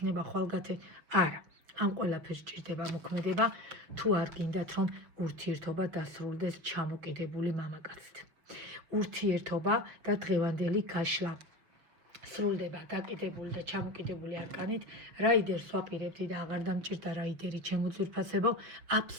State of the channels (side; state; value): left; late; 6.5 ms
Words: ხვალგათენ, არა. ამ ყველაფერს ჭირდება მოქმედება, თუ არ გინდათ რომ ურთიერთობა დასრულდეს ჩამოკიდებული მამაკაცით. ურთიერთობა და დღევანდელი გაშლა სრულდება გაკიდებული და ჩამოკიდებული არკანით, რაიდერს ვაპირებდი და აღარ დამჭირდა რაიდერი ჩემოძვირფასებო,